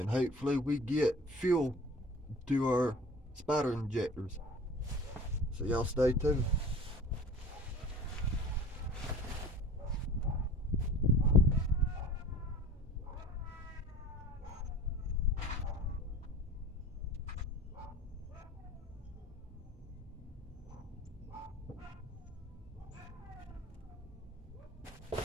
hopefully we get fuel to our spider injectors. So y'all stay tuned.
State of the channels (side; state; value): both; normal; correlation 0.42